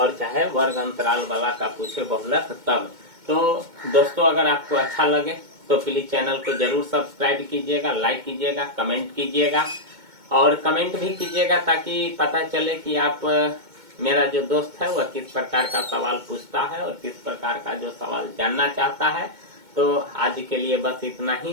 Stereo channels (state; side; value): late; left; 2.2 ms